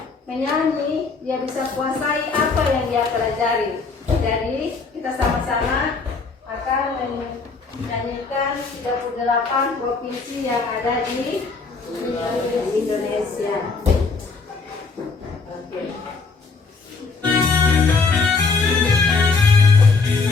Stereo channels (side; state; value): right; quieter; 4.4 dB